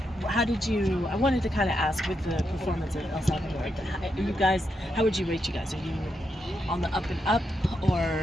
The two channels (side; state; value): both; normal; correlation 0.83